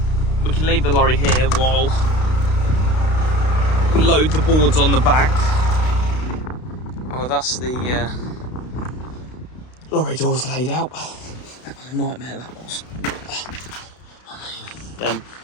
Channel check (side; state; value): right; late; 32 ms